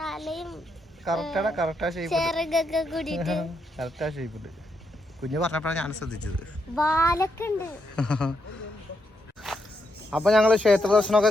കറക്റ്റാ ചെറുകൊക്കെ കൂടിയിട്ട് കറക്റ്റാ ഷേപ്പുണ്ട്. കുഞ്ഞു പറഞ്ഞപ്പോഴാണ് ഞാൻ ശ്രദ്ധിച്ചത്. വാലൊക്കെ ഉണ്ട്. അപ്പൊ ഞങ്ങള് ക്ഷേത്ര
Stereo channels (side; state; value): both; normal; correlation 0.80